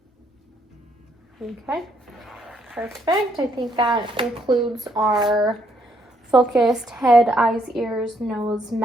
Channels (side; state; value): both; normal; correlation 0.71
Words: Okay, perfect. I think that concludes our focused head, eyes, ears, nose,